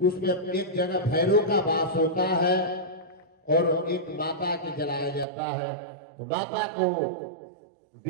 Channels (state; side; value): drops out; left; at 5.2 s